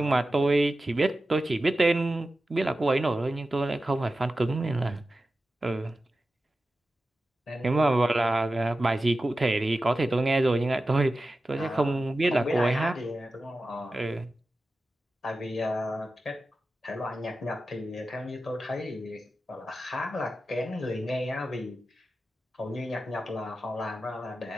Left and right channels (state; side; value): normal; both; correlation 0.93